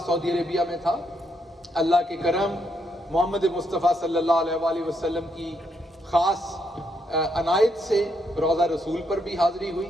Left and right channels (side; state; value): both; normal; correlation 0.77